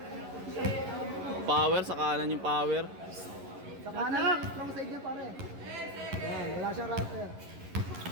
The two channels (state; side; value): late; left; 11 ms